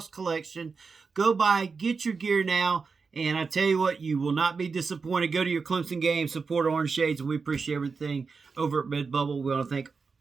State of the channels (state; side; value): quieter; left; 4.9 dB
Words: collection. Go by. Get your gear now. And I tell you what, you will not be disappointed. Go to your Clemson game. Support Orange Shades. And we appreciate everything over at Redbubble. We want to thank